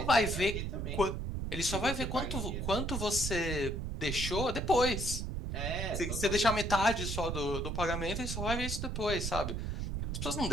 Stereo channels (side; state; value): right; noise; rumble, 3 dB below the sound